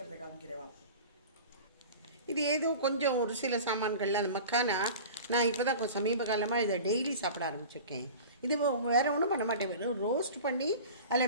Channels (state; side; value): inverted; both; correlation -0.37